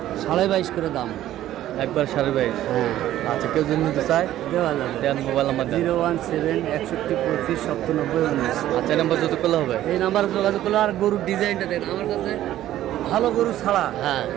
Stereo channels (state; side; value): quieter; left; 13.2 dB